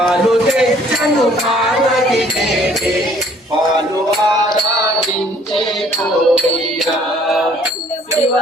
తెచ్చను పార్వతి దేవి పాలు ఆరాధించే కోయ్యా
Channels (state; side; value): normal; both; correlation 0.59